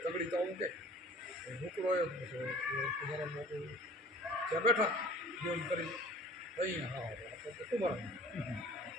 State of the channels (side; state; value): both; normal; correlation 0.47